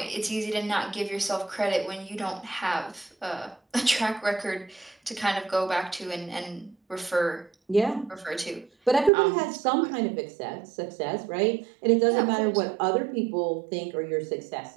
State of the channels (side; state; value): left; drops out; at 9.1 s